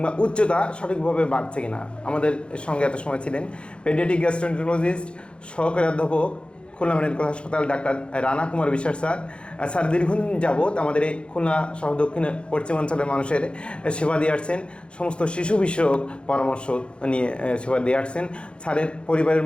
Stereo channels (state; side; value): late; right; 0.057 ms